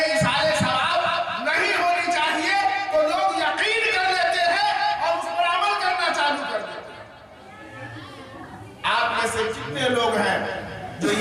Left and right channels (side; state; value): both; identical; correlation 1.00